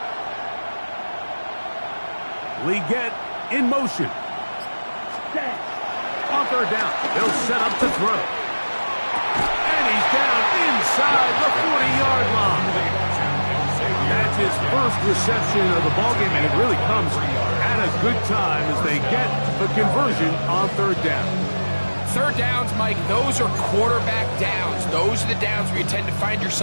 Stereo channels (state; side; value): inverted; both; correlation -1.00